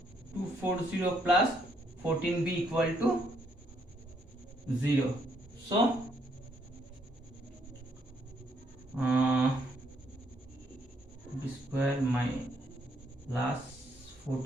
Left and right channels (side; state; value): both; normal; correlation 0.71